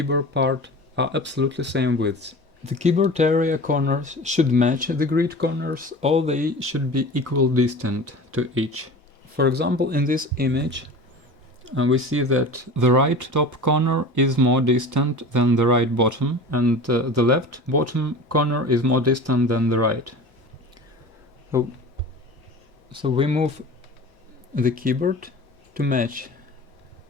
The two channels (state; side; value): normal; both; correlation 0.36